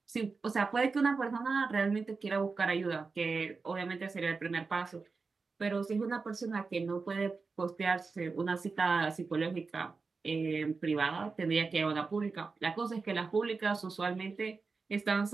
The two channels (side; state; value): left; quieter; 4.4 dB